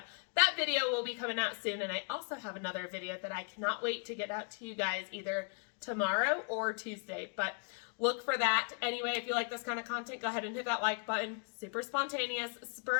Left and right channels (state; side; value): quieter; right; 39.7 dB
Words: that video will be coming out soon. And I also have another video that I cannot wait to get out to you guys either tomorrow or Tuesday. But look for that. Anyway, if you like this kind of content, go ahead and hit that like button. Super spontaneous,